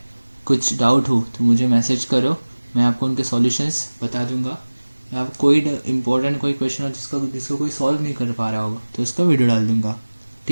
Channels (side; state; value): both; inverted; correlation -1.00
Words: कुछ डाउट हो तो मुझे मैसेज करो, मैं आपको उनके सॉल्यूशंस बता दूंगा। या कोई इम्पोर्टेंट कोई क्वेश्चन हो जिसको कोई सॉल्व नहीं कर पा रहा होगा तो उसका वीडियो डाल दूंगा,